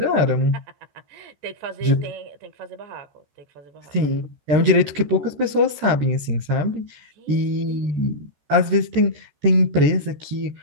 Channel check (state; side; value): late; left; 14 ms